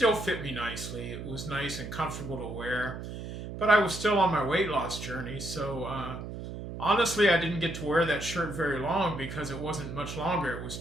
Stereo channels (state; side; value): noise; right; hum, 8 dB below the sound